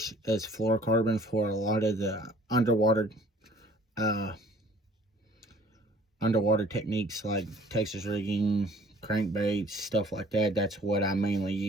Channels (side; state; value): both; normal; correlation 0.54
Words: as fluorocarbon for a lot of the underwater techniques like Texas rigging, crankbaits, stuff like that. That's what I mainly